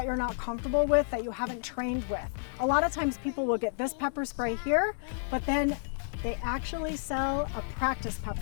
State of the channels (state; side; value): silent; right; 57 dB below the other